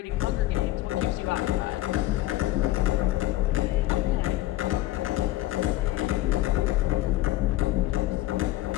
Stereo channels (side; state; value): right; quieter; 16.2 dB